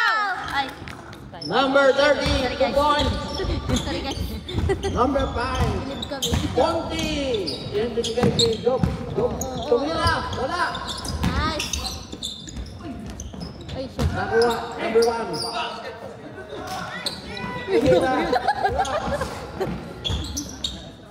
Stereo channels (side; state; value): both; identical; correlation 1.00